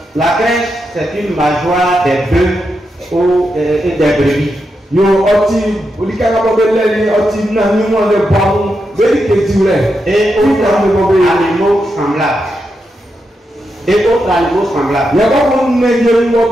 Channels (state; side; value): normal; both; correlation 0.85